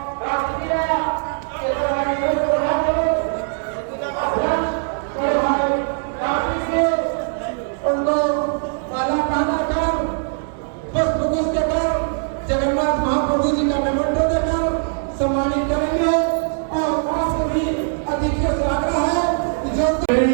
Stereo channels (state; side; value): silent; left; digital silence